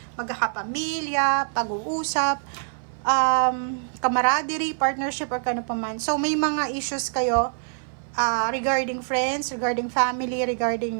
magkakapamilya, pag-uusap, camaraderie, partnership, or kano pa man. So, may mga issues kayo regarding friends, regarding family,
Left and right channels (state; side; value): silent; left; 57 dB below the other